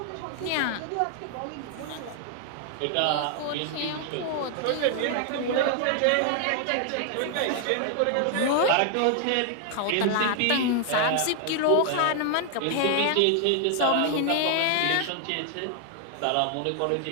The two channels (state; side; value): different; both; correlation 0.00